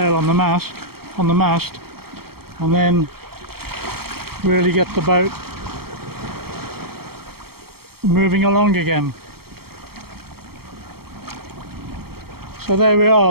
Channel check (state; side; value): late; left; 0.95 ms